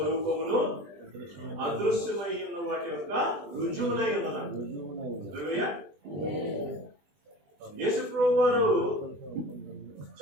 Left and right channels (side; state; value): left; late; 20 ms